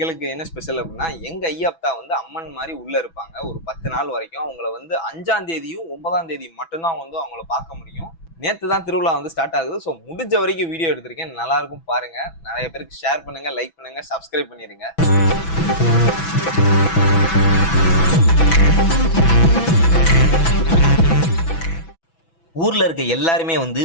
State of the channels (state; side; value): late; right; 6.1 ms